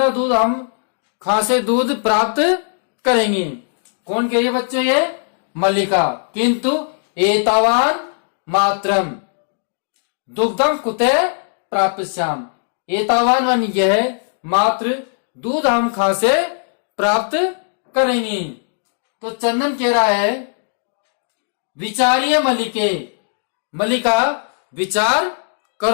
दूध हम कहां से दूध प्राप्त करेंगे। कौन कह रही है बच्चों, ये मल्लिका। किंतु एतावान मात्रम दुग्धम कुते प्राप्स्याम, एतावान वन यह मात्र दूध हम कहां से प्राप्त करेंगे। तो चंदन कह रहा है विचारिय मल्लिके, मल्लिका विचार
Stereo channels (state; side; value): silent; right; digital silence